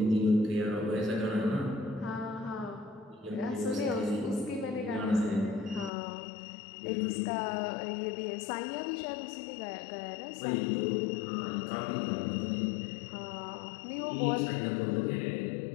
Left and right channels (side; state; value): right; drops out; at 5.9 s